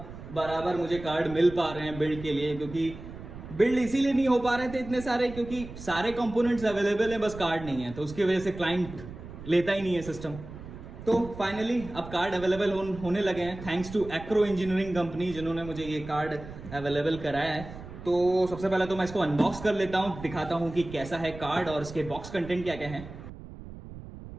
बराबर मुझे कार्ड मिल पा रहे हैं बिल्ड के लिए। क्योंकि बिल्ड इसीलिए नहीं हो पा रहे थे इतने सारे, क्योंकि सारे कंपोनेंट्स अवेलेबल हैं, बस कार्ड नहीं है। तो उसकी वजह से क्लाइंट लेता ही नहीं है सिस्टम। तो फाइनली अब कार्ड अवेलेबल होने लगे हैं, thanks to Acro engineering company जिन्होंने मुझे ये कार्ड अवेलेबल कराया है। तो सबसे पहले तो मैं इसको अनबॉक्स कर लेता हूँ, दिखाता हूँ कि कैसा है कार्ड और इसके बॉक्स कंटेंट क्या क्या है।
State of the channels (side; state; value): right; noise; rumble, 13 dB below the sound